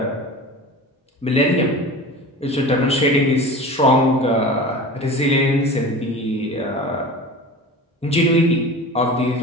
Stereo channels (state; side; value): normal; both; correlation 0.35